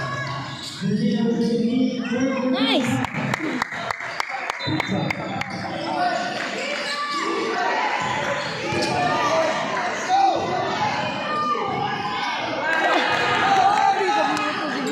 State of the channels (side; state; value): both; identical; correlation 1.00